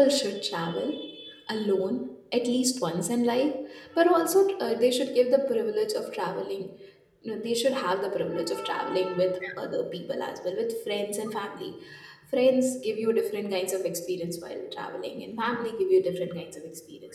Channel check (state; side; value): identical; both; correlation 1.00